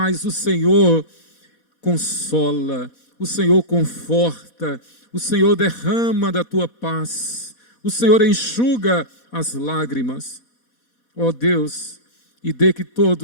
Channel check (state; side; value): late; right; 4.1 ms